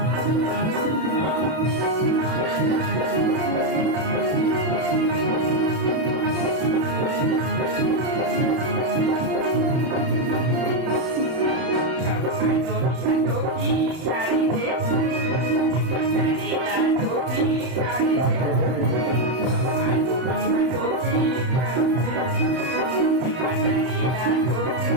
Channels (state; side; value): late; left; 32 ms